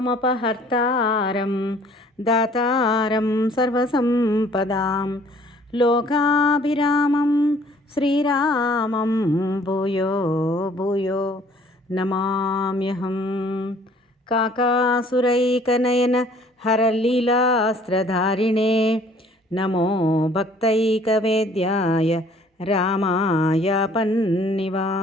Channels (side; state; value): both; normal; correlation 0.56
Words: దాతారం సర్వసంపదాం లోకాభిరామం శ్రీరామం భూయో భూయో నమామ్యహం. కాకాసురైకనయన హరలీలాస్త్రధారిణే నమో భక్తైకవేద్యాయ రామాయ